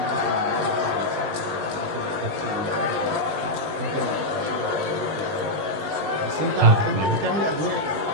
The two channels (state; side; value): late; left; 20 ms